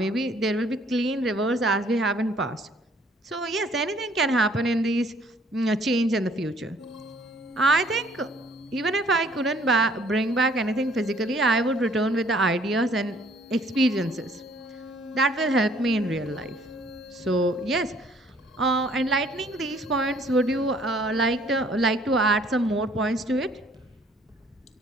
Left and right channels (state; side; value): normal; both; correlation 0.60